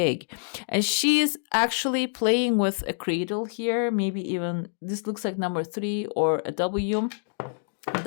And she's actually playing with a cradle here. Maybe even this looks like number 3 or a W.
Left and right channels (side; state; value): right; silent; digital silence